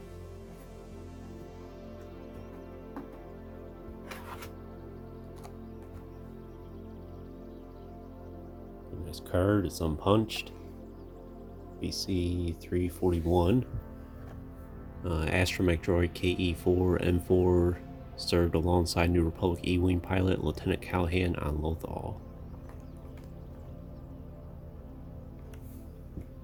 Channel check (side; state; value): both; identical; correlation 1.00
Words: Nice card, it's unpunched. BC 341. Astromech droid KE4-N4 served alongside New Republic E-Wing pilot Lieutenant Callahan on Lothal.